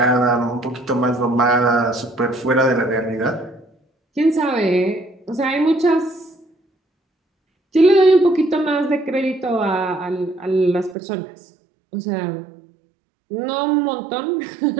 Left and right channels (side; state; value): left; drops out; at 11.0 s